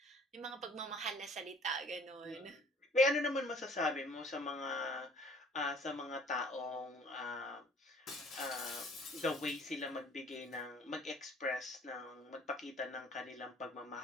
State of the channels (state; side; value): normal; both; correlation 0.55